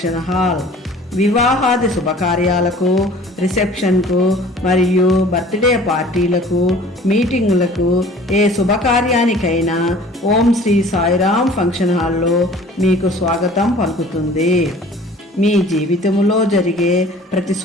హాల్. వివాహాది శుభకార్యాలకు, రిసెప్షన్కు మరియు బర్త్డే పార్టీలకు, మీటింగులకు, ఏ శుభకార్యానికైనా ఓం శ్రీ సాయిరామ్ ఫంక్షన్ హాల్లో మీకు స్వాగతం పలుకుతుంది. మీ జీవితంలో జరిగే ప్రతి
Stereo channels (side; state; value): both; normal; correlation 0.48